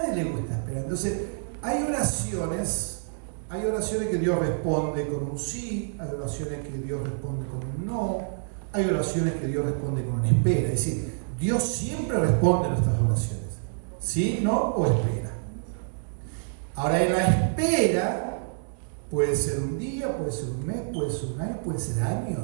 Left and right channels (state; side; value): silent; left; digital silence